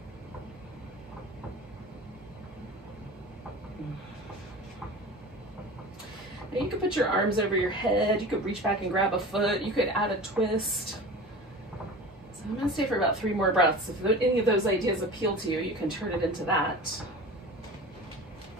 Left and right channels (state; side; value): normal; both; correlation 0.35